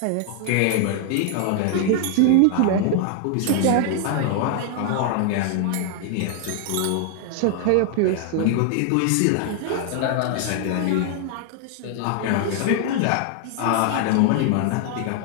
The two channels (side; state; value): both; different; correlation 0.00